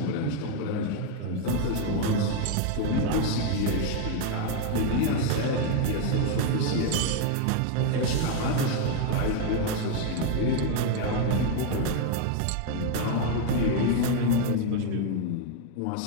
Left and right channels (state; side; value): different; both; correlation 0.01